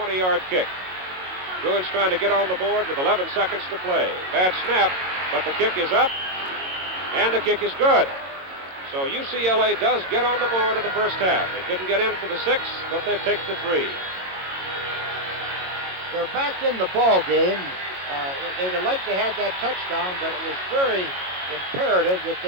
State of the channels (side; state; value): left; late; 22 ms